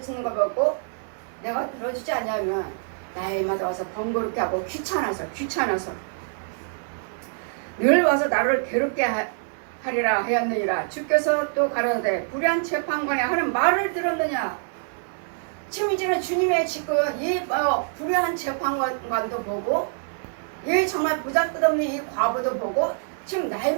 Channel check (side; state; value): left; silent; 62 dB below the other